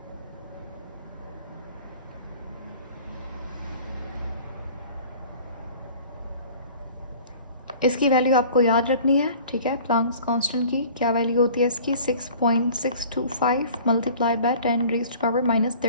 इसकी वैल्यू आपको याद रखनी है, ठीक है। प्लांक्स कांस्टेंट की क्या वैल्यू होती है इसकी, 6.625 मल्टीप्लाई बाय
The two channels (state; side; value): inverted; both; correlation -0.47